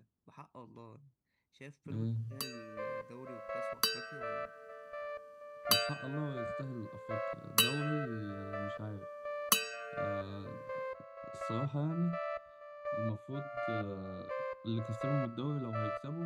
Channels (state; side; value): identical; both; correlation 1.00